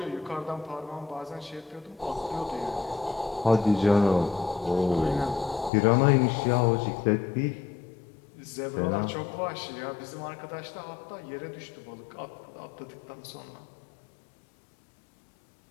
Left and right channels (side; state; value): right; drops out; at 5.7 s